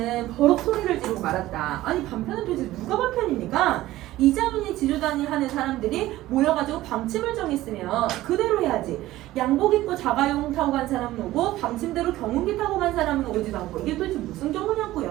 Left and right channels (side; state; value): left; quieter; 16.0 dB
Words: 버럭 소리를 지르고 말았다. 아니 반편은 도대체 누가 반편입니까? 이자민이 지주단위 하는 사람들이 모여가지고 방침을 정했으면 그대로 해야지. 양복 입고 자가용 타고 간 사람은 오고 방침대로 경운기 타고 간 사람은 오지도 않고 이게 도대체 무슨